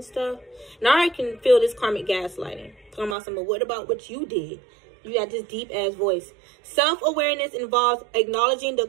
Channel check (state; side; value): drops out; left; at 3.2 s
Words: stuff. Now I can feel this karmic gaslighting. Talking about something, what about what you did? You got this deep ass voice. Self-awareness involves acknowledging the